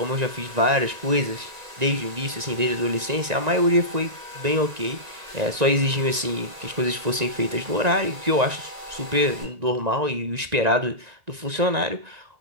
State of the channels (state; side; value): late; left; 1.9 ms